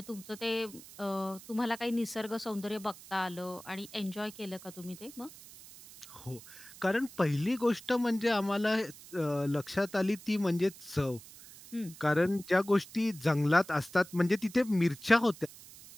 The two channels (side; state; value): right; noise; hiss, 18 dB below the sound